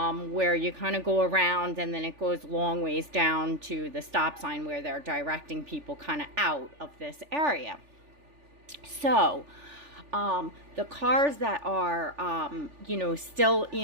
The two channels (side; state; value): left; late; 3.4 ms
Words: where you kind of go around, and then it goes long ways down to the stop sign where they're directing people kind of out of this area. So, the cars that are, still